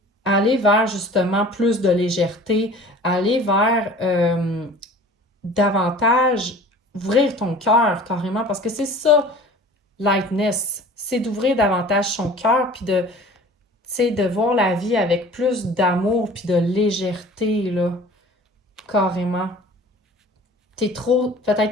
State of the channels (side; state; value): both; normal; correlation 0.44